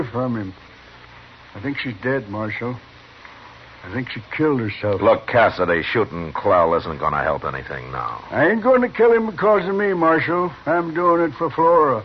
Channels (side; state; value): both; identical; correlation 1.00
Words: from him. I think she's dead, Marshal. I think she killed herself. Look, Cassidy, shooting Clell isn't going to help anything now. I ain't going to kill him because of me, Marshal. I'm doing it for Flora.